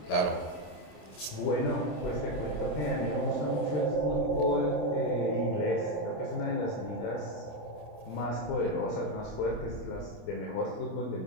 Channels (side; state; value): right; late; 27 ms